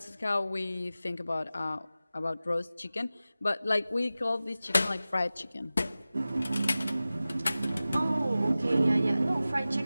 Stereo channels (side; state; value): both; inverted; correlation -0.96